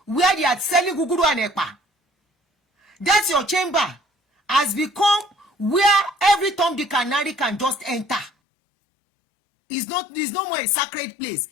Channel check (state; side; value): drops out; right; at 8.3 s